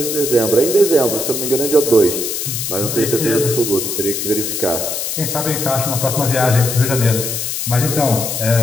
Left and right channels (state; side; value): noise; left; hiss, 3 dB below the sound